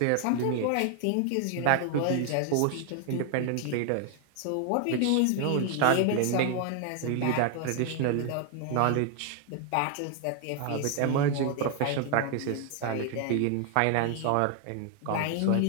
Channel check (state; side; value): different; both; correlation 0.00